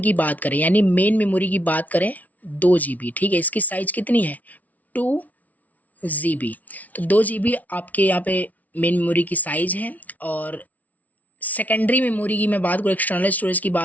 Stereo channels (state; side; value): late; right; 0.073 ms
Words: बात करें यानी मेन मेमोरी की बात करें 2 GB, ठीक है, इसकी साइज कितनी है 2 GB। तो 2 GB आपके यहाँ पे मेन मेमोरी की साइज है। और सेकेंडरी मेमोरी की मैं बात करूँ, एक्सटर्नल स्टोरेज की